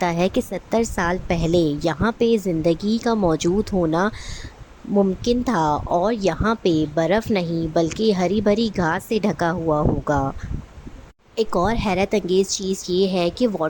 ہے کہ 70 سال پہلے یہاں پہ زندگی کا موجود ہونا ممکن تھا، اور یہاں پہ برف نہیں بلکہ ہری بھری گھاس سے ڈھکا ہوا ہوگا۔ ایک اور حیرت انگیز چیز یہ ہے کہ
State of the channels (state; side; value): identical; both; correlation 1.00